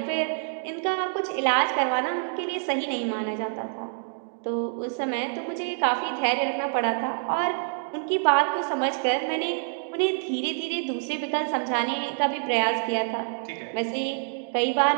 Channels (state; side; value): silent; left; digital silence